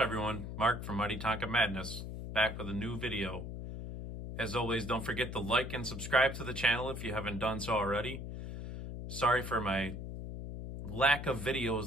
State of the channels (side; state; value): left; noise; hum, 7 dB below the sound